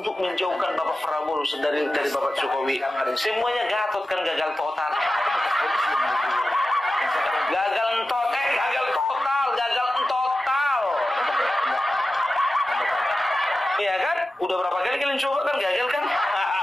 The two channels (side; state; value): both; normal; correlation 0.93